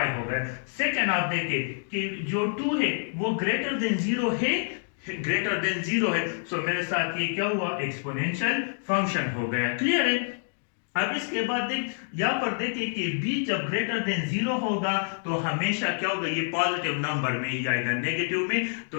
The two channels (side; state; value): right; silent; digital silence